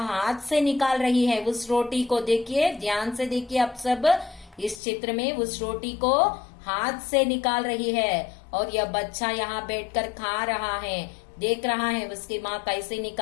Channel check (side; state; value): right; drops out; at 4.8 s